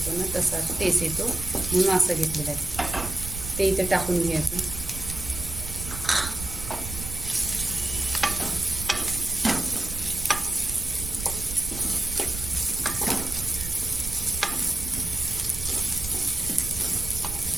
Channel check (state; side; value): noise; right; rumble, 8 dB below the sound